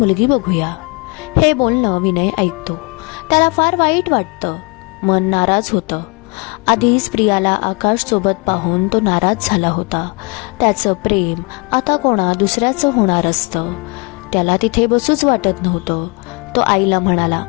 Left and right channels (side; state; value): right; quieter; 30.6 dB